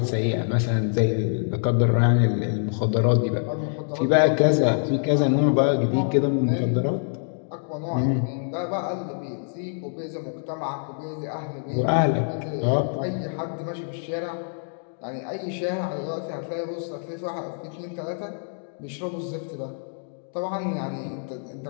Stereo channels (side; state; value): right; silent; digital silence